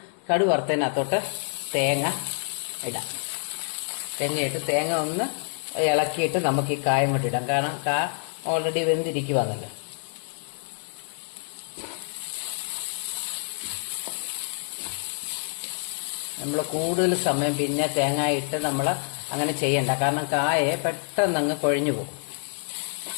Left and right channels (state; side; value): silent; right; 60 dB below the other